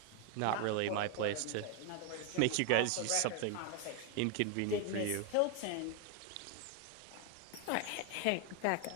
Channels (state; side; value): different; both; correlation 0.01